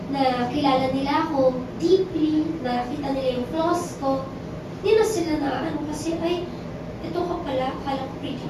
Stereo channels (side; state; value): both; identical; correlation 1.00